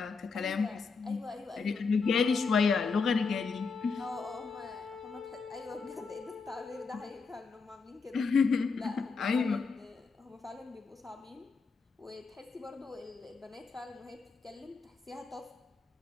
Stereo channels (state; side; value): quieter; right; 4.8 dB